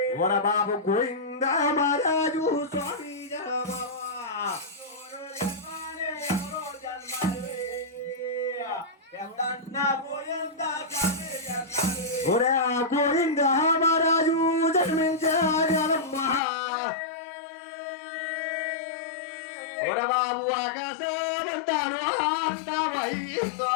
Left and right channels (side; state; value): right; drops out; at 16.4 s